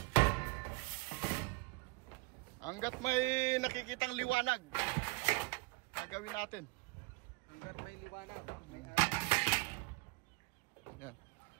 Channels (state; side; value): quieter; left; 28.0 dB